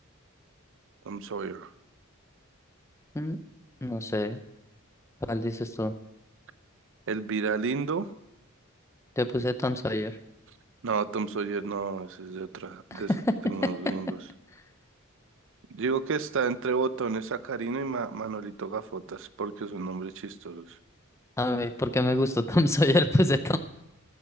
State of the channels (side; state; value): both; normal; correlation 0.51